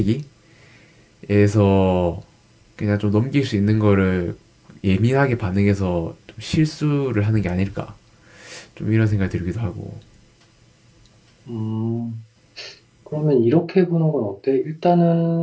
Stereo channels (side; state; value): both; identical; correlation 1.00